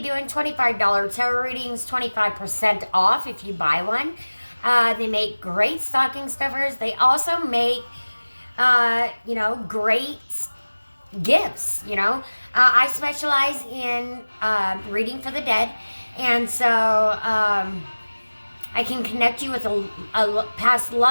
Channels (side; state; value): both; inverted; correlation -1.00